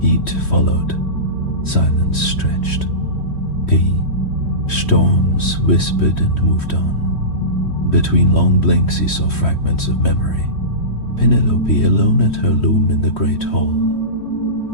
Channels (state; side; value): late; right; 3.1 ms